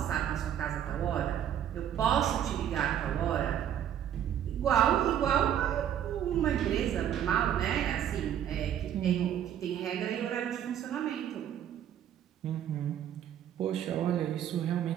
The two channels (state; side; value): quieter; left; 10.0 dB